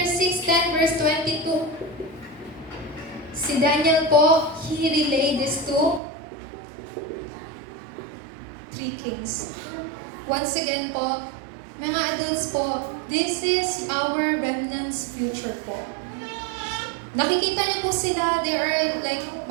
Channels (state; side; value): drops out; left; at 6.0 s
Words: verse 22, si Daniel po, he relayed this to 3 kings. Once again po, mga adults po, this is our remnant's future po. Nakikita niyo po sila, they are like